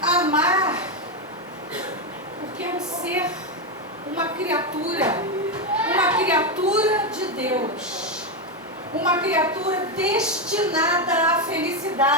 Amar, porque é um ser, uma criatura de Deus, uma criatura destinada à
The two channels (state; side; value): normal; both; correlation 0.07